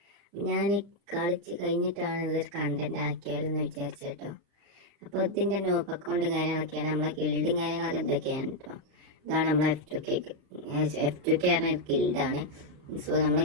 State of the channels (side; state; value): left; late; 35 ms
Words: ഞാൻ കളിച്ച് കഴിഞ്ഞിട്ടാണ് ഇതൊരു കണ്ടന്റ് ആക്കിയാലെന്ന് വിചാരിച്ചു കേട്ടോ. അപ്പോൾ ഇതിൻ്റെ നോബ് അക്കൗണ്ടും കാര്യങ്ങളൊക്കെയാണ്, നമ്മളെ ഗിൽഡും കാര്യങ്ങളൊക്കെ എന്തൊക്കെയാണ് കേട്ടോ. ഇതാണ് നമ്മളെ F2K പറഞ്ഞ ഗിൽഡാണ്. നമ്മളെ